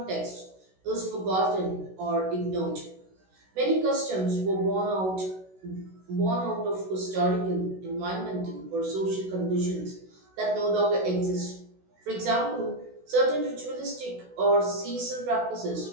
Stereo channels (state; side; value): late; left; 16 ms